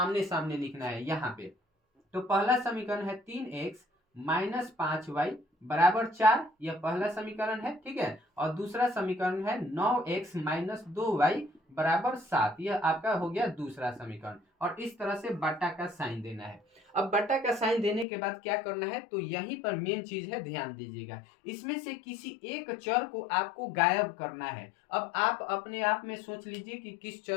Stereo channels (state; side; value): drops out; right; at 18.1 s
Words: सामने लिखना है। यहाँ पे तो पहला समीकरण है 3x माइनस 5y बराबर 4, यह पहला समीकरण है। ठीक है। और दूसरा समीकरण है 9x माइनस 2y बराबर 7, यह आपका हो गया दूसरा समीकरण। और इस तरह से बट्टा का साइन देना है। अब बट्टा का साइन देने के बाद क्या करना है, तो यहीं पर मेन चीज है, ध्यान दीजिएगा। इसमें से किसी एक चर को आपको गायब करना है। अब आप अपने आप में सोच लीजिए कि किस